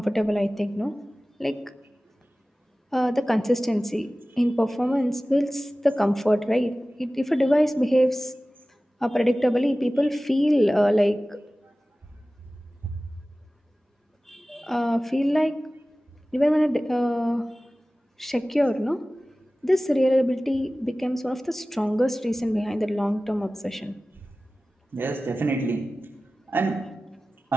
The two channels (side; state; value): both; normal; correlation 0.97